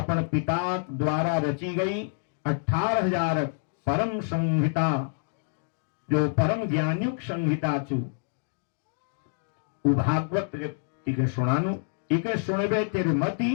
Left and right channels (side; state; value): right; silent; 60 dB below the other